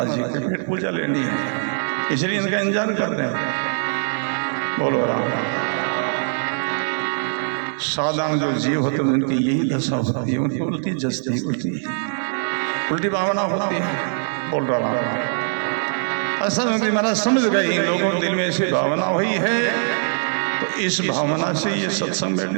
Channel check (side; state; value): left; silent; digital silence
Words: जी के पेट पूजा लेनी है, इसलिए इनका इंतजार कर रहे हैं। बोलो राम। साधारण जो जीव होते हैं उनकी यही दशा होती है, उनकी उल्टी जस्ती होती है, उल्टी भावना होती है। बोल रहा हूँ ऐसा महाराज समझ गए, इन लोगों के दिल में ऐसी भावना हुई है, तो इस भावना से ये सत्संग में